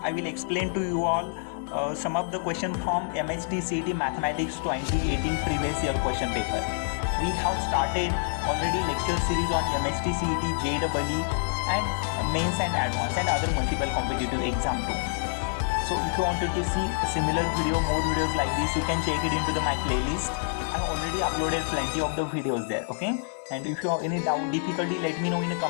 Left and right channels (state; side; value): silent; right; digital silence